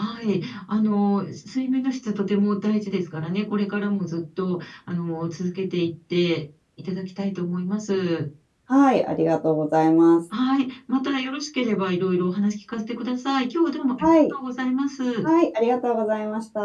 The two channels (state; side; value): identical; both; correlation 1.00